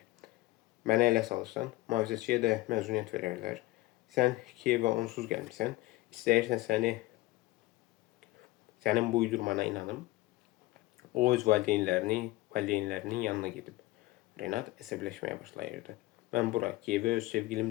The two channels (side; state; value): right; quieter; 18.9 dB